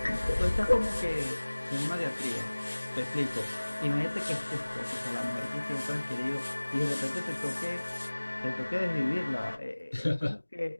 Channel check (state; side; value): inverted; both; correlation -1.00